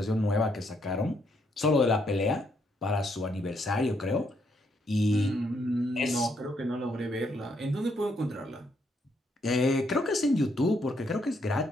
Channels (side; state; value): both; normal; correlation 0.74